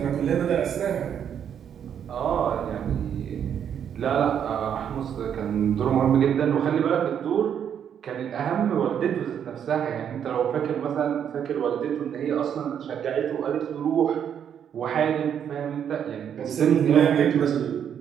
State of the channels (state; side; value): quieter; left; 8.6 dB